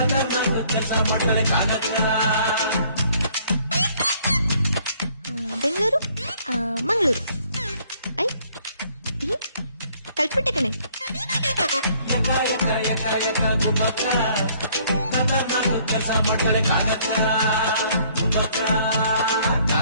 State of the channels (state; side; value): inverted; both; correlation -0.61